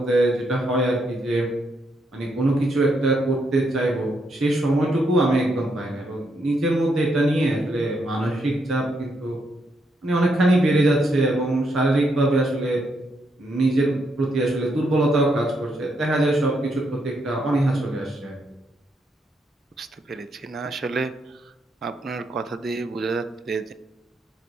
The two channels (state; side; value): normal; both; correlation 0.78